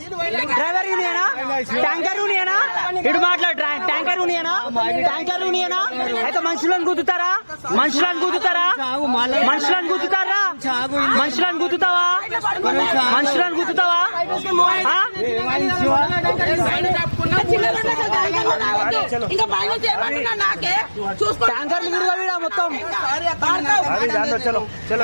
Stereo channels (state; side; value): inverted; both; correlation -1.00